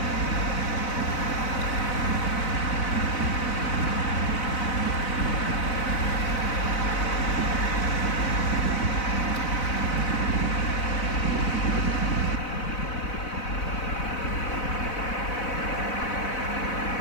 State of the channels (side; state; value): right; late; 4.0 ms